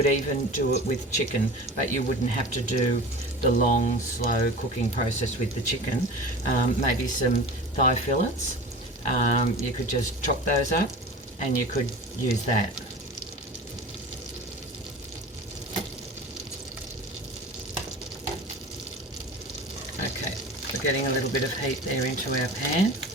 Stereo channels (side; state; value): both; normal; correlation 0.36